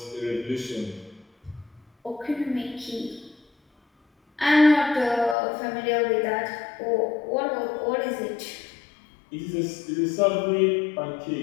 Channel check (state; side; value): drops out; right; at 5.4 s